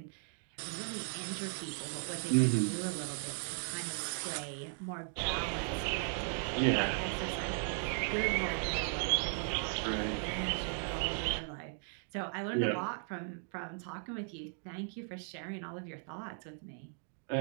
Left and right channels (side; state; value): left; silent; 53 dB below the other